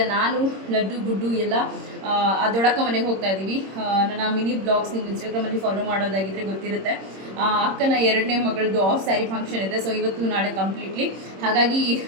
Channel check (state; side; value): late; left; 26 ms